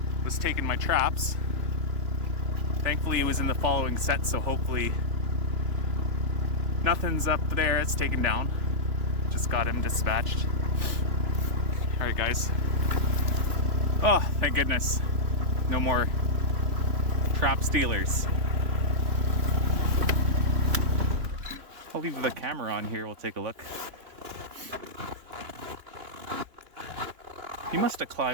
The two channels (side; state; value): left; late; 3.4 ms